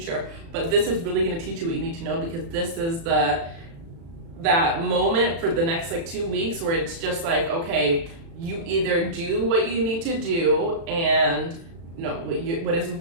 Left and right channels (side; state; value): left; late; 36 ms